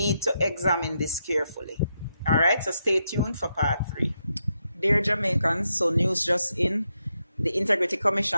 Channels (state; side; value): inverted; both; correlation -0.82